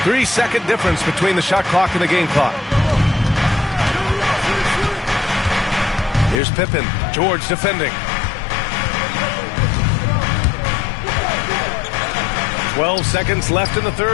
3-second difference between the shot clock and the game clock. Here's Pippen. George defending. 12 seconds left in the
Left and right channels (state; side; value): drops out; right; at 6.4 s